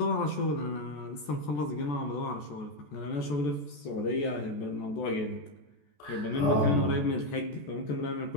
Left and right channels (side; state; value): right; late; 14 ms